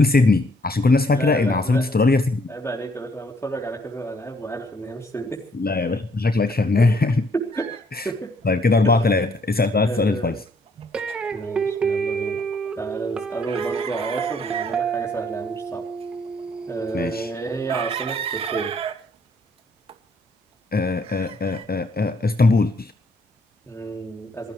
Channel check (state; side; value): normal; both; correlation 0.66